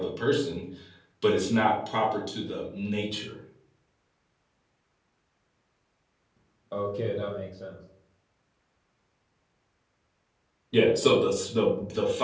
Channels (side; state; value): both; identical; correlation 1.00